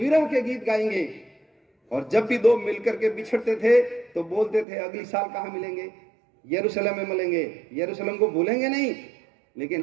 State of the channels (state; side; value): drops out; left; at 4.7 s